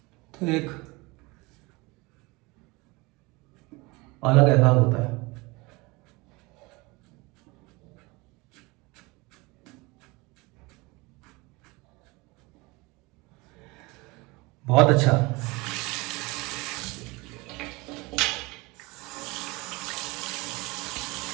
तो एक अलग एहसास होता है। बहुत अच्छा।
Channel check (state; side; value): quieter; left; 24.4 dB